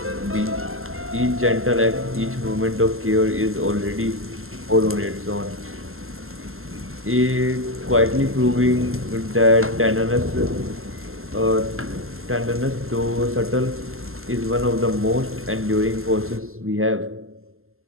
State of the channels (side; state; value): left; late; 0.62 ms